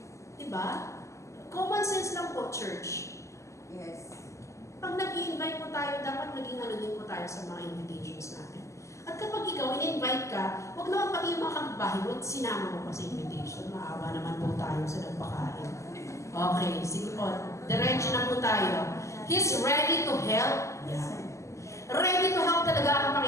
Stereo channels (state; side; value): late; right; 0.14 ms